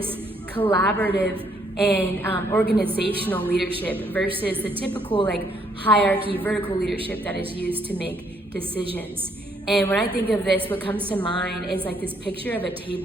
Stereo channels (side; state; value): both; normal; correlation 0.69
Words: collaborative and organizational leadership versus the typical like hierarchy, vertical leadership that is used to make decisions. And when I think of this, what comes to mind is like this picture of a